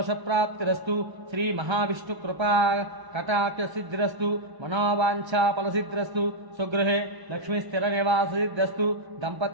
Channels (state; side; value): late; left; 1.3 ms